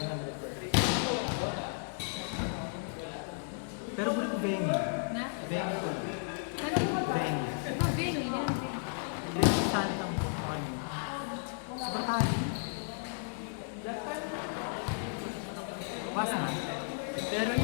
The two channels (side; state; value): right; silent; 55 dB below the other